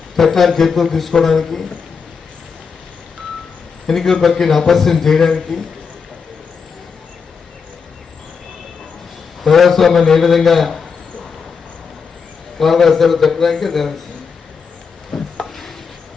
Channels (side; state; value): right; quieter; 5.7 dB